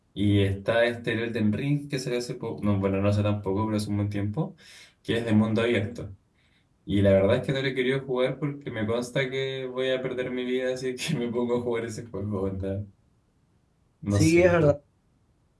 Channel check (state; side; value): identical; both; correlation 1.00